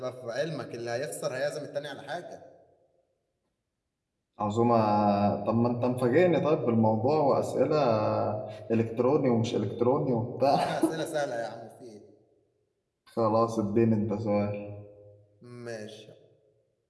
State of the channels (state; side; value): identical; both; correlation 1.00